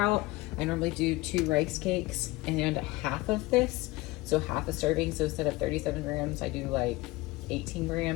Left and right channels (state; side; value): quieter; right; 20.3 dB